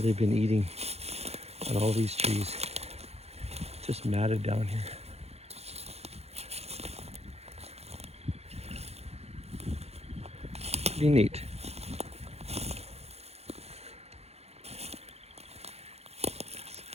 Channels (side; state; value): left; late; 0.30 ms